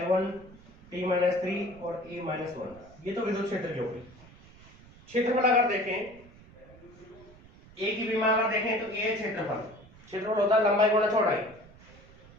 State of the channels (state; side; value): noise; right; rumble, 23 dB below the sound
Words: T-3 और A-1। ये तो विद्युत क्षेत्र की होगी। क्षेत्रफल अगर देखें, ए की विमा अगर देखें तो ए क्षेत्रफल, क्षेत्रफल होता है लंबाई गुणा चौड़ाई,